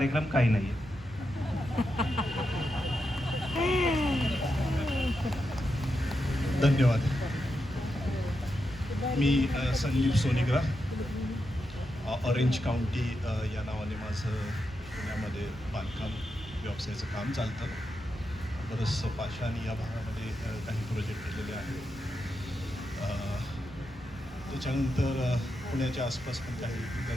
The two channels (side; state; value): both; normal; correlation 0.86